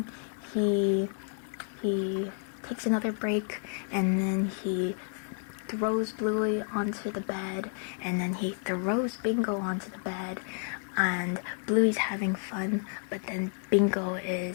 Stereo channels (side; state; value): right; silent; 57 dB below the other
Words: he takes another break, and then he throws Bluey onto the bed, and then he throws Bingo onto the bed, and Bluey's having fun, but then Bingo